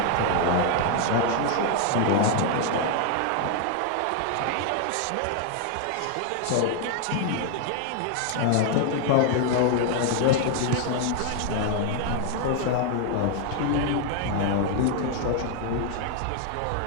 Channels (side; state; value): both; different; correlation 0.00